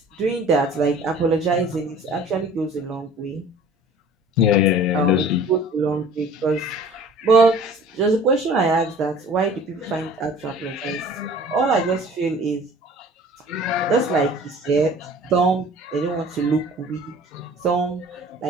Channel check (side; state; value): both; normal; correlation 0.47